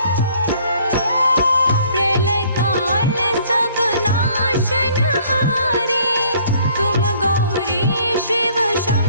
प्रलय काल सब नाशनहारी, तुम गौरी शिव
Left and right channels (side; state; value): both; inverted; correlation -0.59